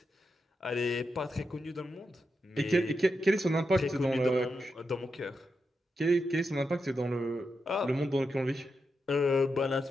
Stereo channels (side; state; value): both; normal; correlation 0.86